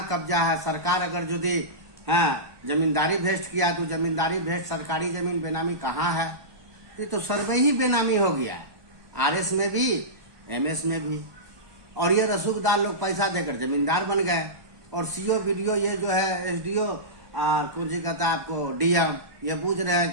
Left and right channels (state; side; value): late; left; 1.0 ms